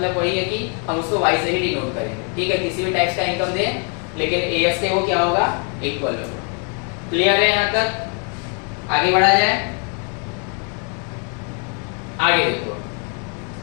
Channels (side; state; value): right; quieter; 37.9 dB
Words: वही है कि हम उसको Y से ही डिनोट करेंगे, ठीक है। किसी भी टाइप का इनकम दे, लेकिन AS के वो क्या होगा, इक्वल होगा। क्लियर है यहाँ तक, आगे बढ़ा जाए। आगे देखो